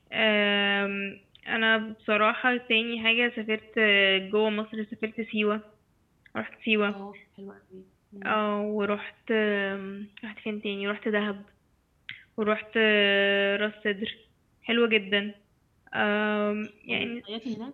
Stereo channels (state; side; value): identical; both; correlation 1.00